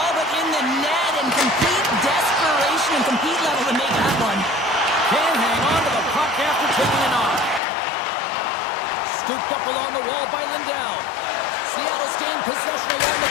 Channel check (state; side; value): drops out; right; at 7.6 s